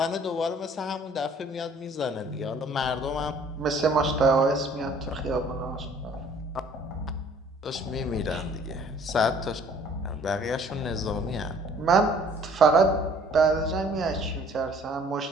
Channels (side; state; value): both; normal; correlation 0.56